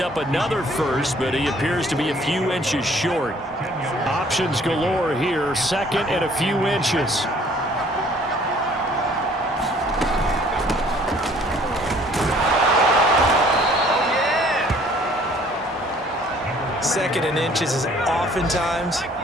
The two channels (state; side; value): normal; both; correlation 0.57